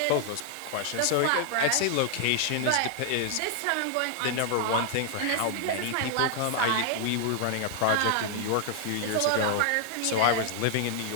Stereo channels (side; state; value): both; different; correlation 0.00